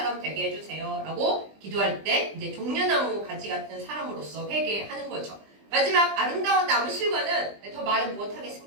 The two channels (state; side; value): late; left; 20 ms